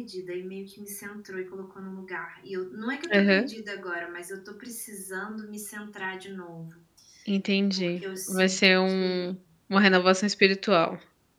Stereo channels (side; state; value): both; identical; correlation 1.00